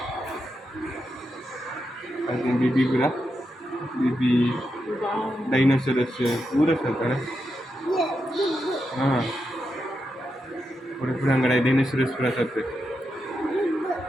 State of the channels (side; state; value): both; normal; correlation 0.86